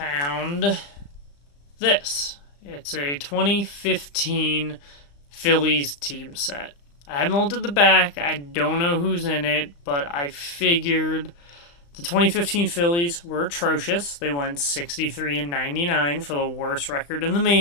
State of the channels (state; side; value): late; right; 35 ms